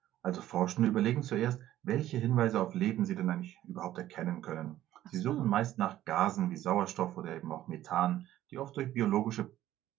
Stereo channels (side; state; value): left; quieter; 13.5 dB